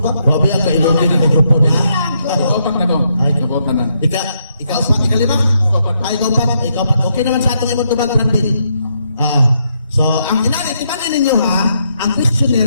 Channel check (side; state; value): both; inverted; correlation -0.77